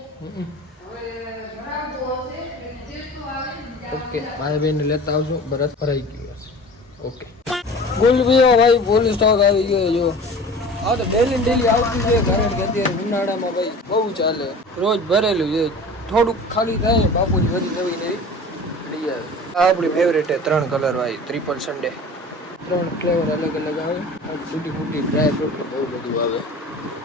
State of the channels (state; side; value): normal; both; correlation 0.40